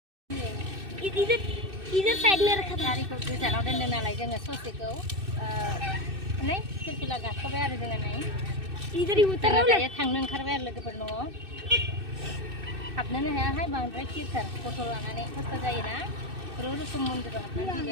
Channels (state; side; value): late; left; 2.6 ms